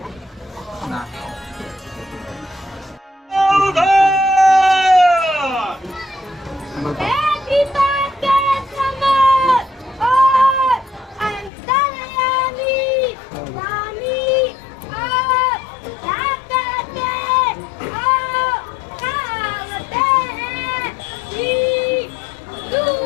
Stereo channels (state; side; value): drops out; right; at 11.5 s